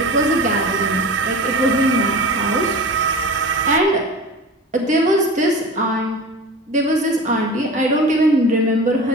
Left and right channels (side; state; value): both; normal; correlation 0.34